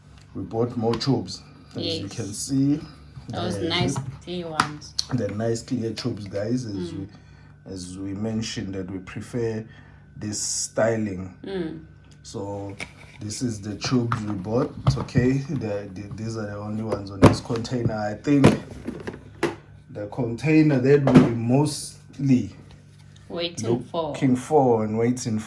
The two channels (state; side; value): identical; both; correlation 1.00